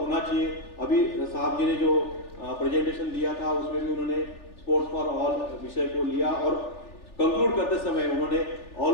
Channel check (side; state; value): right; late; 3.4 ms